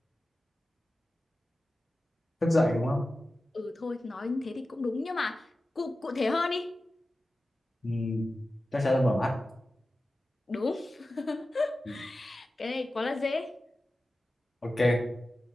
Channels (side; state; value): both; normal; correlation 0.94